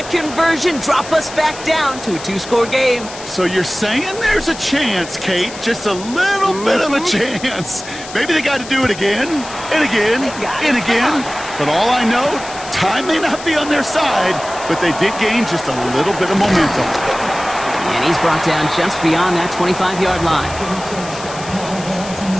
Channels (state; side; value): noise; left; hiss, 14 dB below the sound